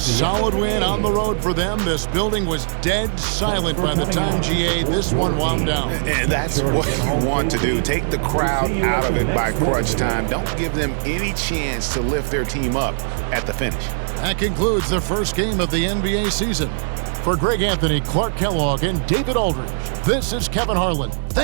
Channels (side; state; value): left; silent; 66 dB below the other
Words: win on the road for them. This building was dead silent by the time, GA, this one wound down. And that's what you want to do. Take the crowd out of it by crunch time. Don't give them any chance to lift their team up at the finish. That concludes the first game of the NBA season. For Greg Anthony, Clark Kellogg, and David Aldridge, this is Kevin Harlan.